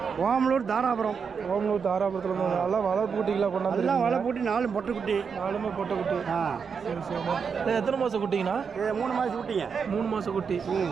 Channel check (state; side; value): quieter; left; 6.1 dB